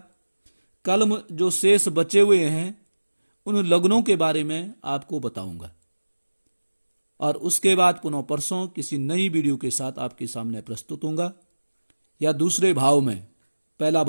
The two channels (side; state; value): both; inverted; correlation -1.00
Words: कल जो शेष बचे हुए हैं उन लग्नों के बारे में आपको बताऊंगा और उसके बाद पुनः परसों किसी नई वीडियो के साथ आपके सामने प्रस्तुत होऊंगा, या दूसरे भाव में। पहला